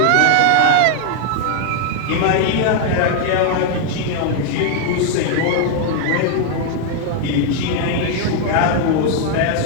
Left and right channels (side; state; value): both; different; correlation 0.00